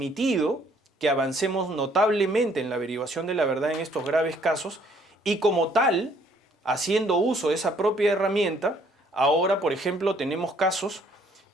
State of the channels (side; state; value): both; normal; correlation 0.63